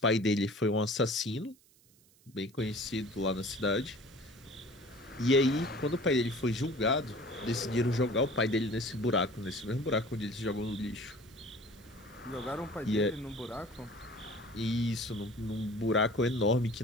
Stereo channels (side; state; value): right; noise; hiss, 29 dB below the sound